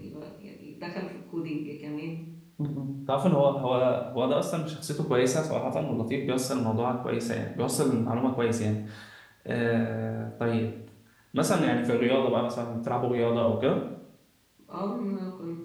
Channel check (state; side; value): identical; both; correlation 1.00